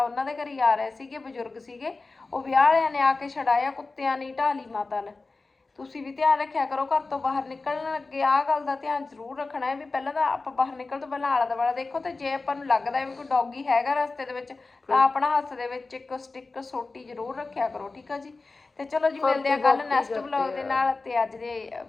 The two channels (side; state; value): right; quieter; 3.7 dB